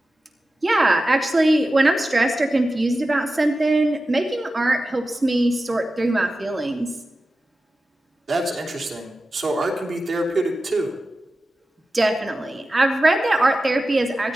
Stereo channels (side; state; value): both; normal; correlation 0.94